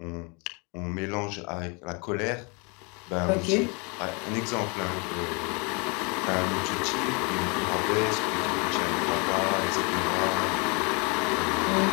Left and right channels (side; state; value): right; quieter; 31.8 dB